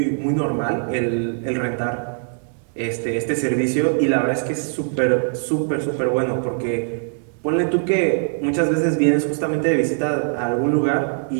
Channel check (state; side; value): silent; left; 64 dB below the other